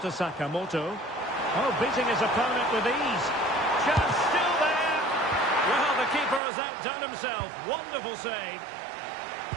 Sakamoto. Oh, beating his opponent with ease. Chance still there. Well, the keeper has outdone himself. Wonderful save.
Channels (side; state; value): left; drops out; at 6.4 s